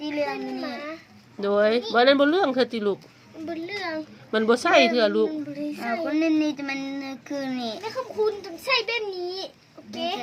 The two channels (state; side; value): identical; both; correlation 1.00